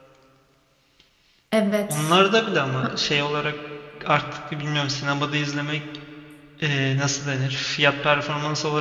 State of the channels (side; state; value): both; identical; correlation 1.00